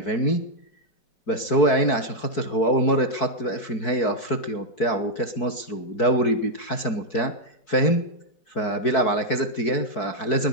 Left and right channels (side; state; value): right; late; 4.6 ms